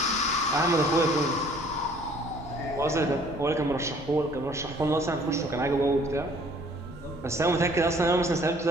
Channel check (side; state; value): both; normal; correlation 0.56